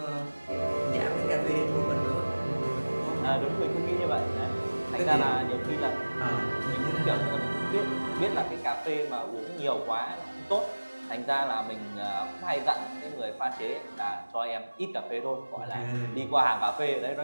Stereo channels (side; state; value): both; inverted; correlation -1.00